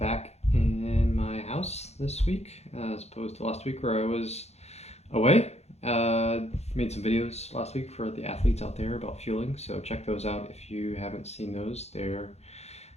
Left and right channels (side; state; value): right; late; 0.31 ms